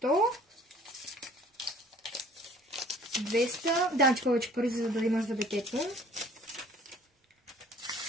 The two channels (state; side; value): normal; both; correlation 0.52